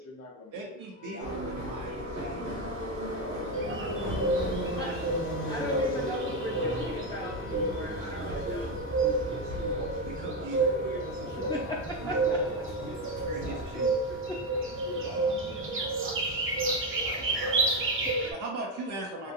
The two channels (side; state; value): both; normal; correlation 0.09